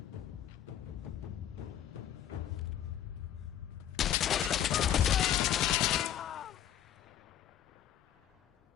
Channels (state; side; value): quieter; right; 10.8 dB